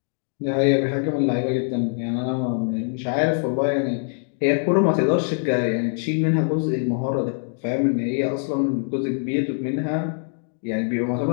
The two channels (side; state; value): right; silent; 60 dB below the other